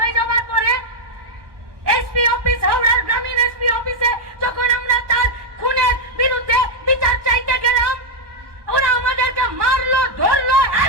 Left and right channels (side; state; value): left; late; 1.2 ms